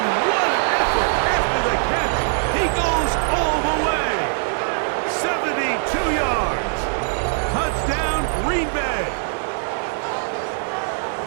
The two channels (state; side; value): silent; left; digital silence